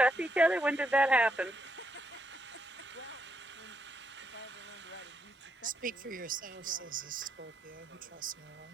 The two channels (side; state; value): both; normal; correlation 0.78